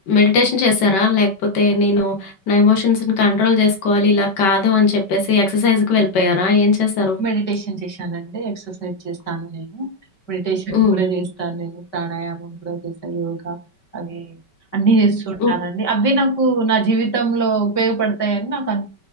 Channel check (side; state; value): right; late; 5.2 ms